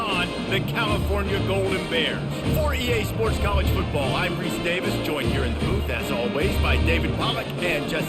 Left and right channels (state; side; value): identical; both; correlation 1.00